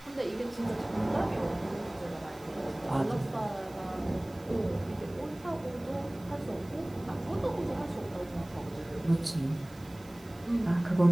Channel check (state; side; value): noise; right; hiss, 24 dB below the sound